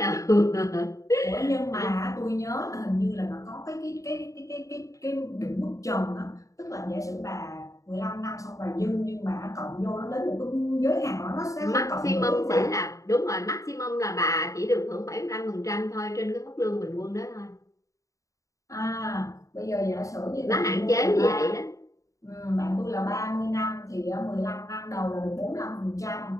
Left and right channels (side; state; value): right; late; 0.16 ms